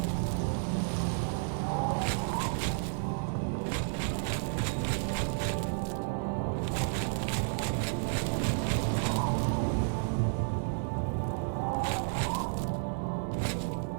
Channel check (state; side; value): silent; left; digital silence